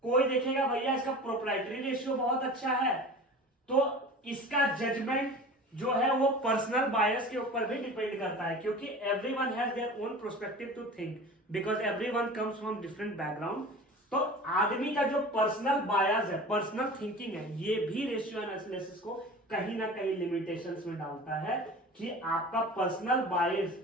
कोई देखेगा भैया इसका प्रोप्राइटरी रेशियो बहुत अच्छा है. तो इसका जजमेंट जो है वो पर्सनल बायस के ऊपर भी डिपेंड करता है, क्योंकि everyone has their own perspective to think because everyone comes from different background. तो आदमी का जो पर्सनल बायस है, पर्सनल थिंकिंग है, ये भी रेशियो एनालिसिस को कहीं ना कहीं लिमिटेशंस में डालता है कि आपका पर्सनल बायस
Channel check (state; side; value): normal; both; correlation 0.38